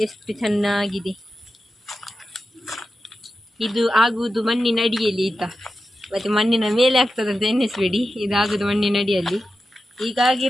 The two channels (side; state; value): both; normal; correlation 0.91